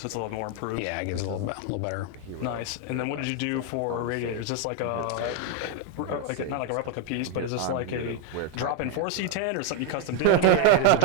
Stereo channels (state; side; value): different; both; correlation 0.00